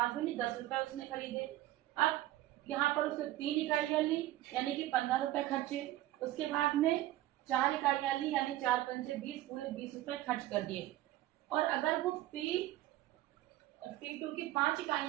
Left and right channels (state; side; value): quieter; left; 15.2 dB